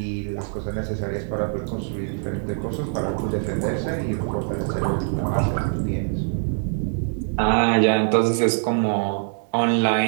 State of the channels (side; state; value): left; silent; 56 dB below the other